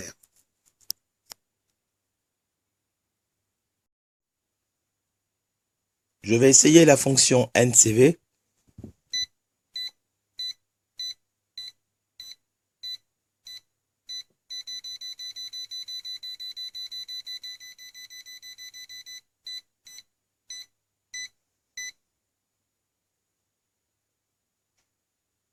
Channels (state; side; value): identical; both; correlation 1.00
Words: Je vais essayer la fonction NCV.